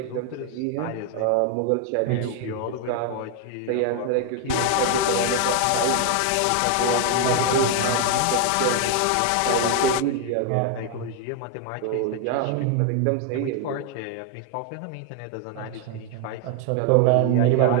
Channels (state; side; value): different; both; correlation 0.01